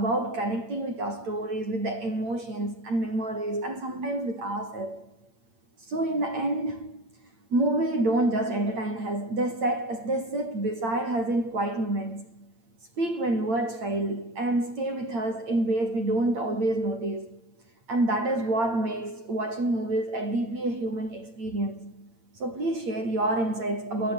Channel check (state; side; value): late; left; 8.8 ms